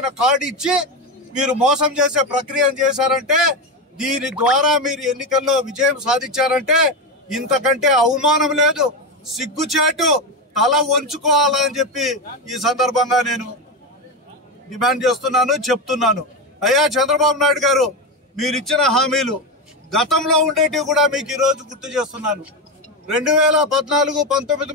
కార్డు ఇచ్చి మీరు మోసం చేసే ప్రక్రియను చేశారంటే, దీని ద్వారా మీరు ఎన్నికల్లో విజయం సాధించారంటే ఇంతకంటే అవమానం లేదు. సిగ్గుచేటు, తల వంచుకోవాలని చెప్పి ఈ సందర్భంగా నేను డిమాండ్ చేస్తున్నాను, చెప్తున్నాను. అయ్యా చంద్రబాబు నాయుడు గారు, మీరు ఇచ్చిన హామీలు గతంలో ఉండేటివి కూడా మీకు ఈ రోజు గుర్తు చేస్తున్నాను. 2014-19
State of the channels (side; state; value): both; normal; correlation 0.14